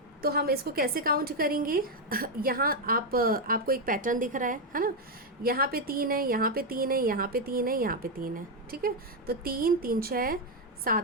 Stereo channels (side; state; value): both; normal; correlation 0.03